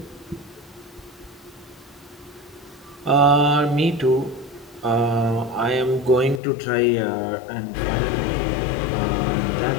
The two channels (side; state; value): right; drops out; at 6.4 s